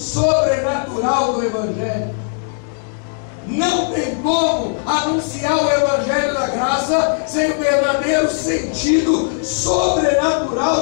do Evangelho. Não tem como anunciar o Evangelho da Graça sem o verdadeiro sentido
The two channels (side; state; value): right; silent; 67 dB below the other